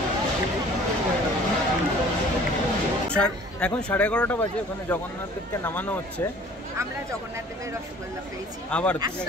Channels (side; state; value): both; normal; correlation 0.51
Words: এখন 11:30 বাজে, ওখানে জগন্নাথ দেবকে নামানো হচ্ছে। আমরা জগন্নাথ দেবের রসগোল্লা পেয়েছি আবার